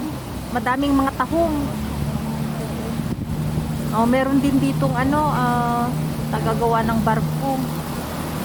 Madaming mga tahong. Oh, meron din ditong tagagawa ng barko.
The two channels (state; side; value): identical; both; correlation 1.00